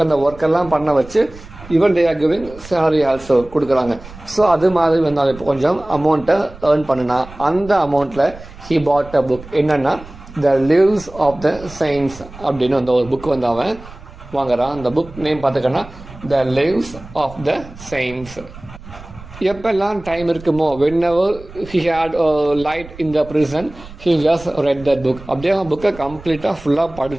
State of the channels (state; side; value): noise; right; rumble, 17 dB below the sound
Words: அந்த ஒர்க்கெல்லாம் பண்ண வச்சு even they are giving salary also கொடுக்குறாங்க. ஸோ அது மாதிரி வந்தால் இப்போ கொஞ்சம் அமௌண்ட்டை ஏர்ன் பண்ணினா அந்த அமௌண்ட்டில் ஹி பாட் அ புக். என்னென்னா த லிவ்ஸ் ஆஃப் த செயின்ட்ஸ் அப்படின்னு வந்து ஒரு புக் வந்து அவன் வாங்குறான். அந்த புக் நேம் பார்த்துக்கன்னா the lives of the saints. எப்பெல்லாம் டைம் இருக்குமோ, whenever he had a light in the prison, he just read that book. அப்படியே அவன் புக்கை கம்ப்ளீட்டாக ஃபுல்லாக